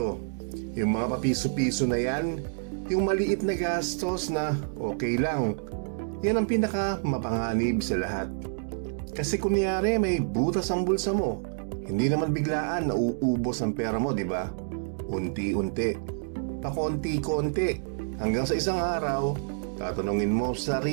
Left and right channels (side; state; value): left; silent; digital silence